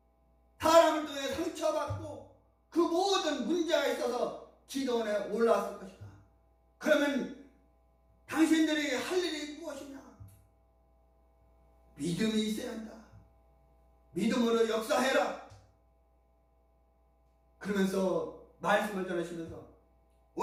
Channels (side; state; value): both; identical; correlation 1.00